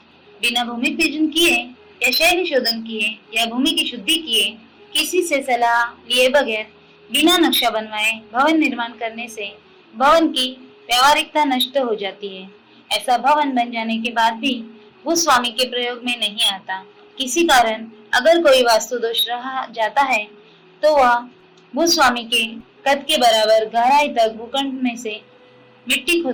बिना भूमि पूजन किए या शैली शोधन किए या भूमि की शुद्धि किए, किसी से सलाह लिए बगैर बिना नक्शा बनवाए भवन निर्माण करने से भवन की व्यवहारिकता नष्ट हो जाती है। ऐसा भवन बन जाने के बाद भी भूस्वामी के प्रयोग में नहीं आता। किसी कारण अगर कोई वास्तु दोष रहा जाता है तो वह भूस्वामी के कद के बराबर गहराई तक भूखंड में से मिट्टी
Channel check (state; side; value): identical; both; correlation 1.00